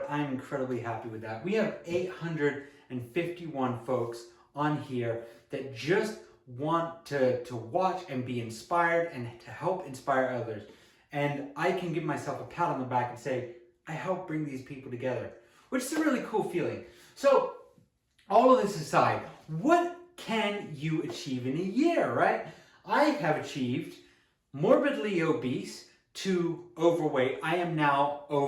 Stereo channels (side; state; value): both; identical; correlation 1.00